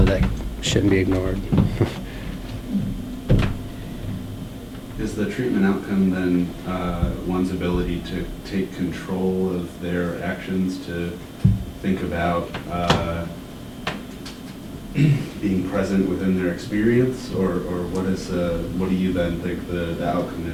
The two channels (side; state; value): both; identical; correlation 1.00